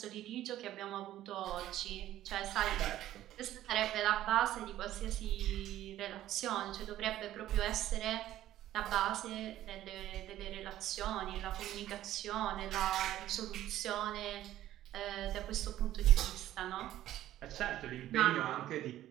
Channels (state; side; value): quieter; left; 13.4 dB